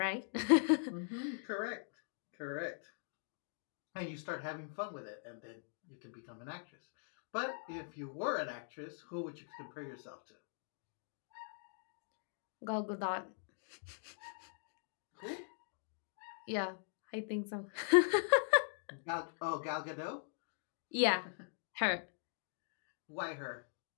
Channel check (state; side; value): silent; right; digital silence